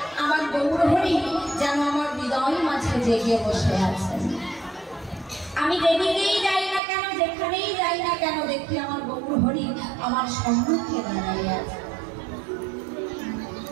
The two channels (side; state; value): left; drops out; at 6.8 s